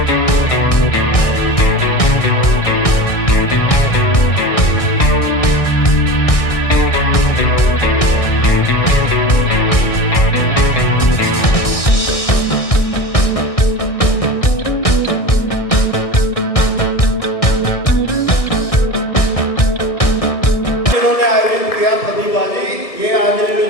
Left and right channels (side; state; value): right; late; 1.6 ms